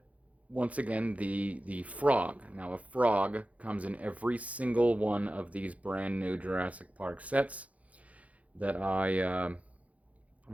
once again, the frog. Now, a frog comes in every single one of these brand new Jurassic Park sets that I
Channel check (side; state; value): left; late; 0.067 ms